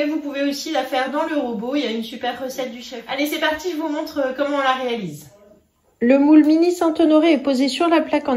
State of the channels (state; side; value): identical; both; correlation 1.00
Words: vous pouvez aussi la faire dans le robot. Il y a une super recette du chef. Allez, c'est parti, je vous montre comment on la réalise. Le moule mini Saint-Honoré est posé sur la plaque